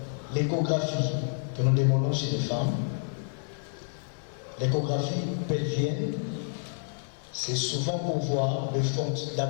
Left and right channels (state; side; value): silent; right; digital silence